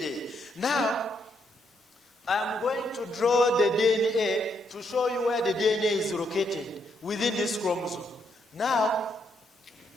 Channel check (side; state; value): both; normal; correlation 0.75